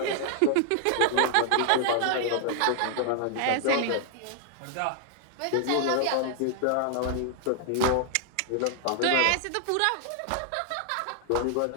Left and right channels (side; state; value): both; different; correlation 0.00